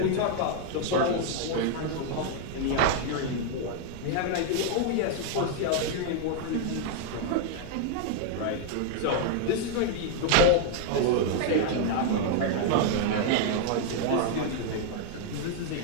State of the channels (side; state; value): both; different; correlation 0.00